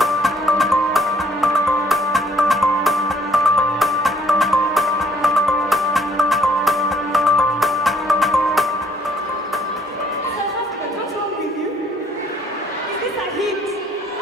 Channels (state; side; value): normal; both; correlation 0.63